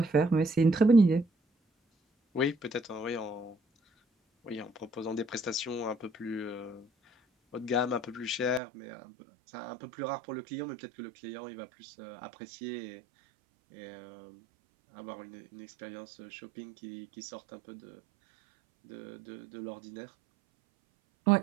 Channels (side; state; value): left; drops out; at 8.6 s